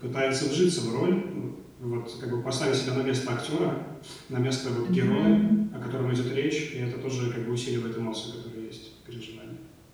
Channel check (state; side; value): identical; both; correlation 1.00